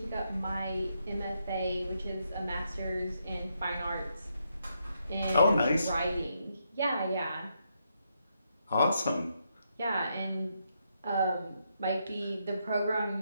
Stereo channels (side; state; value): both; inverted; correlation -0.79